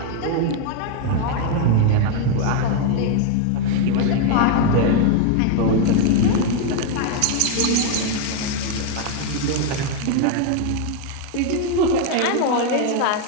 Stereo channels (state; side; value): different; both; correlation 0.00